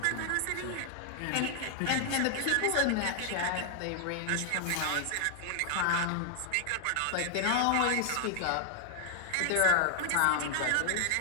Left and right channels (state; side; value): different; both; correlation -0.01